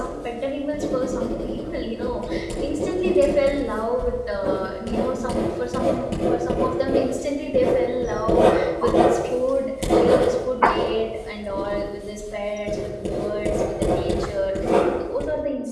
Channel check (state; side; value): identical; both; correlation 1.00